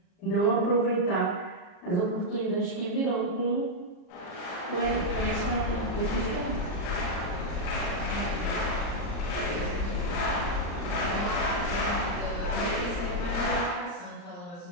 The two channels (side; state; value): right; late; 39 ms